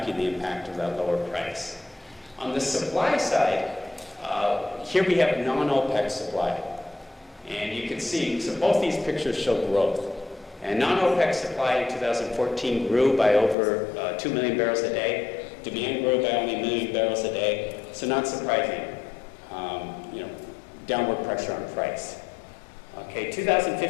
the impact of that lower price. On the supply side, here we have non-OPEC supply. And you can see, so both these pictures show growth. And non-OPEC supply in 2014 grew by over 2 million barrels a day. Demand grew by only 1 million barrels a day. So not surprising, downward pressure on price. Okay,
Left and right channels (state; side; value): drops out; right; at 13.6 s